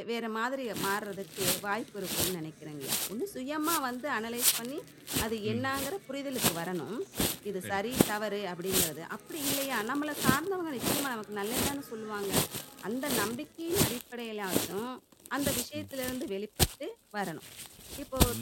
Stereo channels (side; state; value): both; identical; correlation 1.00